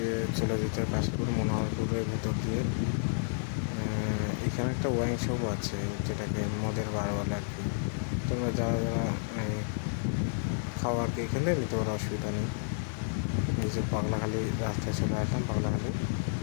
চলে যেতে কাশীপুর মনোহরপুরের ভেতর দিয়ে। এখানে একটা ওয়াইন শপ আছে, যেটাকে মদের বার বলে আর কি। তোমরা যারা খাওয়ার খেয়ে খেলে নিতে পারো, অসুবিধা নেই। এই যে পাগলাখালি রাস্তায় চলে আসলাম। পাগলাখালি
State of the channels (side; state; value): right; silent; digital silence